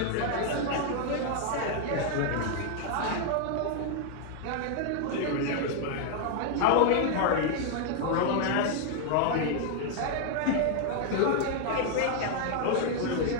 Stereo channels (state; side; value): different; both; correlation 0.00